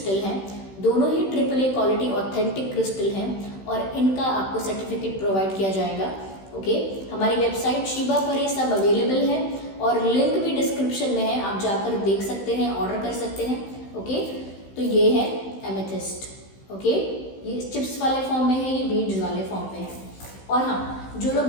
हैं, दोनों ही AAA क्वालिटी ऑथेंटिक क्रिस्टल हैं, और इनका आपको सर्टिफिकेट प्रोवाइड किया जाएगा। ओके, हमारी वेबसाइट शिबा पर ये सब अवेलेबल है, और लिंक भी डिस्क्रिप्शन में है, आप जाकर देख सकते हैं, ऑर्डर कर सकते हैं। ओके, तो ये है एमेथिस्ट। ओके, ये चिप्स वाले फॉर्म में है, ये बीड्स वाले फॉर्म में है। और हाँ, जो लोग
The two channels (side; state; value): right; late; 16 ms